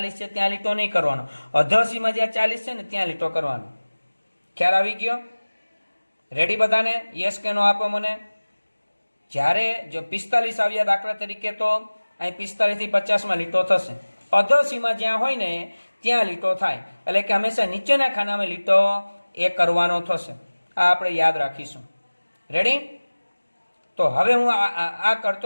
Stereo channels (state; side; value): inverted; both; correlation -1.00